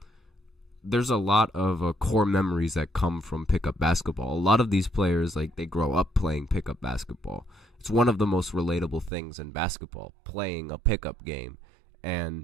core memories that come from pickup basketball. A lot of these players, like, they grow up playing pickup basketball. It's one of the most relatable things in basketball, playing a pickup game.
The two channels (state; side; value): drops out; left; at 9.1 s